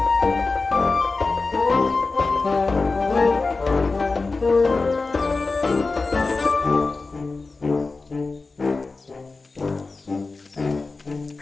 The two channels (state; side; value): quieter; right; 3.8 dB